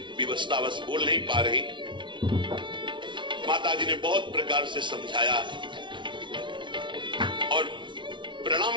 विवशतावश बोल नहीं पा रही। माता जी ने बहुत प्रकार से समझाया और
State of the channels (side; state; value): left; late; 0.24 ms